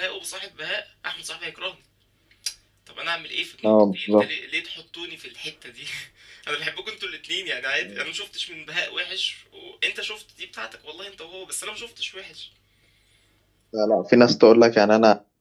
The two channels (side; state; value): both; identical; correlation 1.00